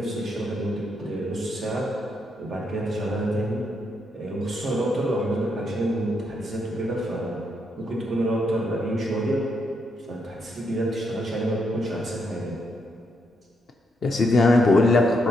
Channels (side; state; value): both; normal; correlation 0.78